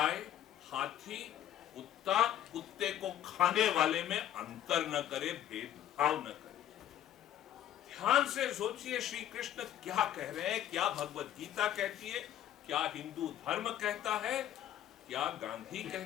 हाथी, कुत्ते को खाने वाले में अंतर न करे, भेदभाव न करे। ध्यान से सोचिए श्री कृष्ण क्या कह रहे हैं, क्या भगवत गीता कहती है, क्या हिंदू धर्म कहता है, क्या गांधी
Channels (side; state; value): right; quieter; 11.4 dB